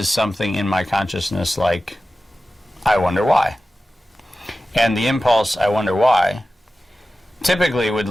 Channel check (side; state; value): both; normal; correlation 0.95